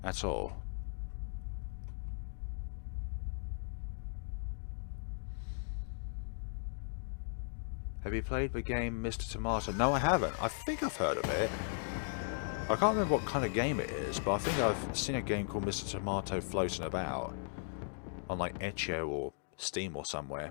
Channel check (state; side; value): silent; right; digital silence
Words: at all. Have you played the game Mr. Tomato? No, I haven't. I think I've heard of it. I can't remember what kind of game it is, but I think I've seen a game called Mr. Tomato floating about on, like, Itch.io or Steam or